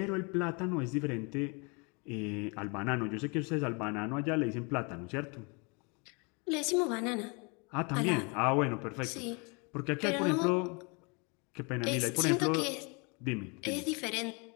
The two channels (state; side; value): quieter; right; 31.7 dB